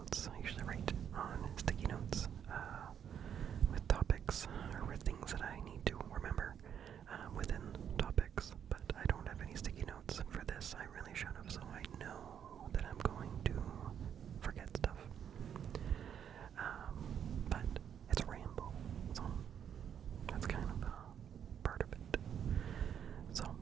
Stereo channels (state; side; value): quieter; left; 8.7 dB